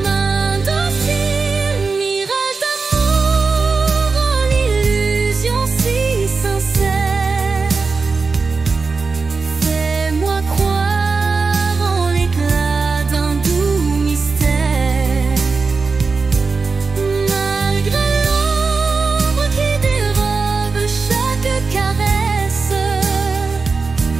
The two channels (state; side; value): quieter; left; 4.4 dB